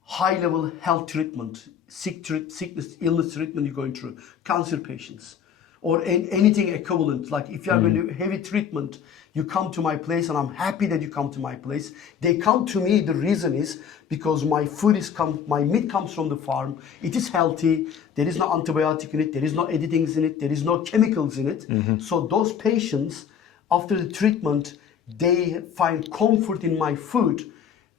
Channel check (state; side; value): quieter; right; 7.9 dB